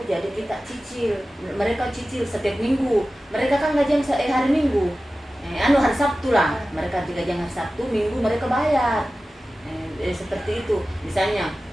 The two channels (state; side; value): normal; both; correlation 0.95